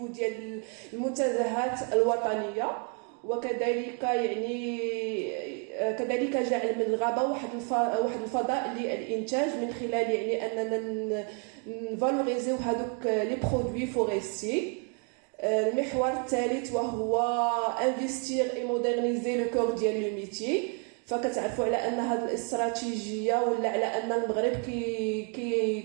ديال المنتزهات الوطنيه، وكذلك يعني كذلك جعل من الغابه واحد الفضاء للانتاج من خلال يعني اننا نفالوريزيو هذوك لي برودوي فوريستي. المحور الثالث وهو انفستير اي مودرنيزي لو كور ديال لو ميتي. فكتعرفوا على ان هذه الاستراتيجيه ولا على ان المغرب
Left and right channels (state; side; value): quieter; left; 38.6 dB